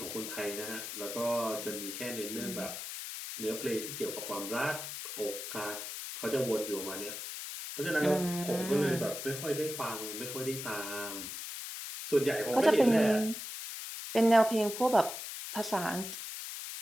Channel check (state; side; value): noise; left; hiss, 7 dB below the sound